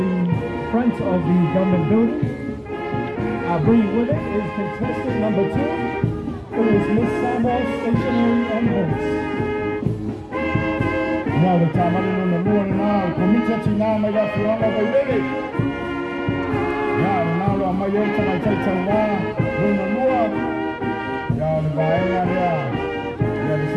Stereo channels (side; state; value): both; identical; correlation 1.00